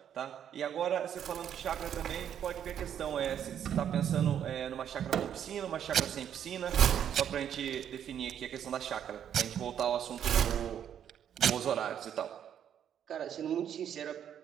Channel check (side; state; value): left; quieter; 9.3 dB